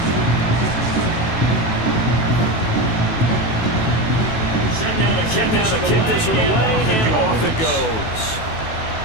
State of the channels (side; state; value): right; late; 18 ms